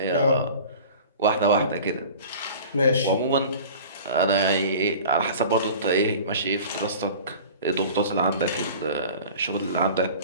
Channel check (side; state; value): both; inverted; correlation -0.41